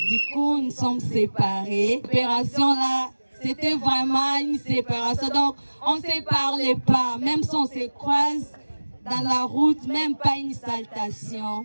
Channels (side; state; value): both; inverted; correlation -1.00